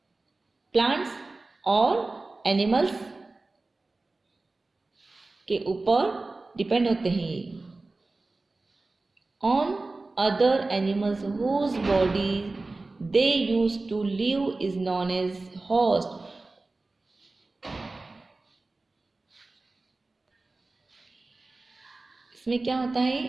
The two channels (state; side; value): quieter; left; 3.3 dB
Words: प्लांट्स और एनिमल्स के ऊपर डिपेंड होते हैं on other animals whose body they use to live is known as host. इसमें क्या होता